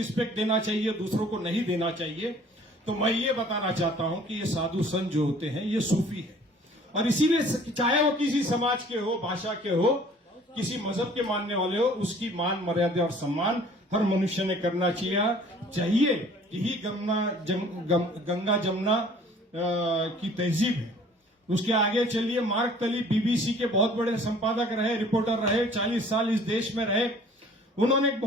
देना चाहिए, दूसरों को नहीं देना चाहिए। तो मैं ये बताना चाहता हूं कि ये साधु संत जो होते हैं ये सूफी है और इसीलिए चाहे वो किसी समाज के हो, भाषा के हो, किसी मजहब के मानने वाले हो, उसकी मान मर्यादा और सम्मान हर मनुष्य ने करना चाहिए। यही गंगा जमुना की तहजीब है। उसके आगे चलिए, मार्क तली बीबीसी के बहुत बड़े संपादक रहे, रिपोर्टर रहे, 40 साल इस देश में रहे। उन्होंने एक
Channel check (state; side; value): normal; both; correlation 0.52